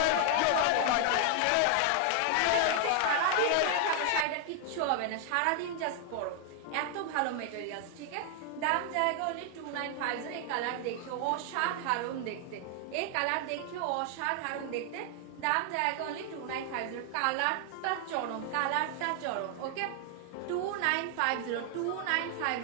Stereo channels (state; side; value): different; both; correlation 0.00